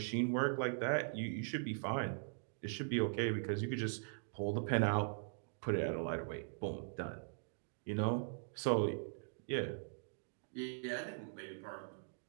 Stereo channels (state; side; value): silent; left; digital silence